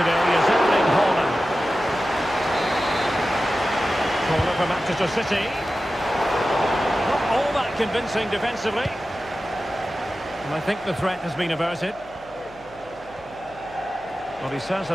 is Erling Haaland. Corner for Manchester City. Not all that convincing defensively. And I think the threat has been averted. Well, he's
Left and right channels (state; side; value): noise; left; hum, 25 dB below the sound